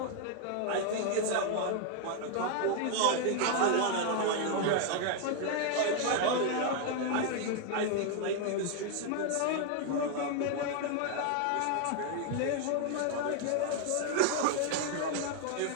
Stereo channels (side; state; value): both; different; correlation 0.01